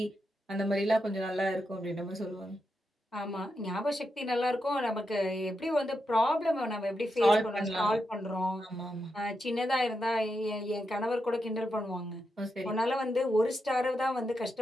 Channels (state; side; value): normal; both; correlation 0.86